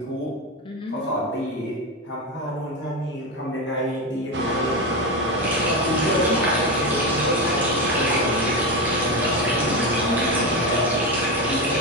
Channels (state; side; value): normal; both; correlation 0.15